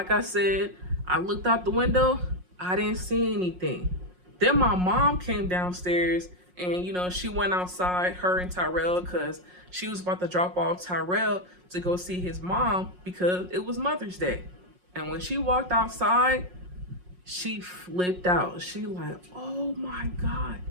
I said, I looked out the window, I didn't see anything. Then my mom came downstairs and, she went outside, her and Tyrell, because she was about to drop off Tyrell to go see his mom because it was Mother's Day. And when she walked outside, she flipped out. She like, oh my God.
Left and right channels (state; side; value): late; left; 5.5 ms